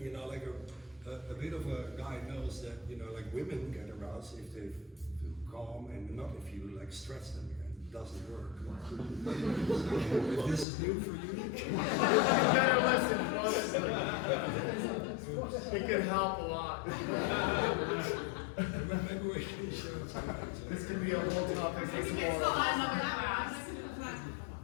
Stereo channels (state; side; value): drops out; right; at 10.7 s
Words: you know, like a bit of a guy knows that, you know, like women get aroused if they feel calm and not if you like stress them. It doesn't work. So, if this is new for you, Better listen, honestly. It can help a lot. maybe we can share some. This could be a whole topic this morning.